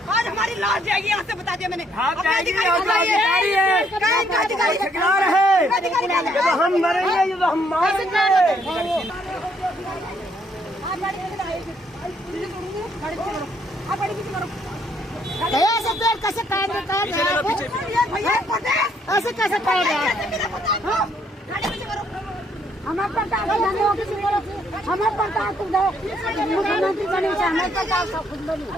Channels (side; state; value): both; normal; correlation 0.69